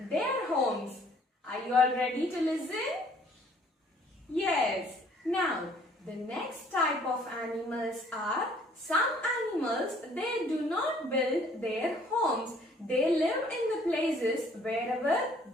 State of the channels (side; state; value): both; normal; correlation 0.59